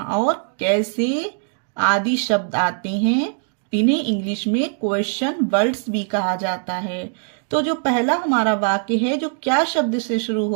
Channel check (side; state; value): left; silent; 58 dB below the other